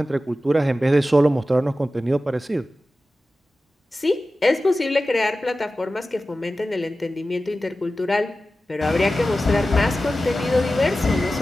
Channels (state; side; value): normal; both; correlation 0.94